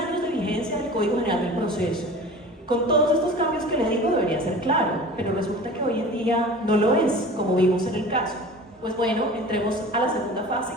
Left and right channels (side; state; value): both; normal; correlation 0.39